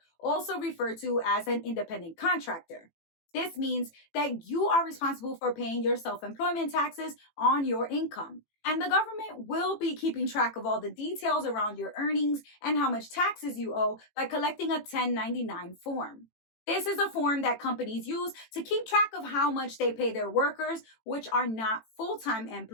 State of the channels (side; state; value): right; late; 18 ms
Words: also referred to as an independent contractor. This means that you are responsible for paying your self-employment taxes on your income. And the government will be keeping track of all the details around your earnings and how much taxes you owe by collecting a 1099 form. This is a form that companies use to keep track of how much they pay their workers, which are not full-time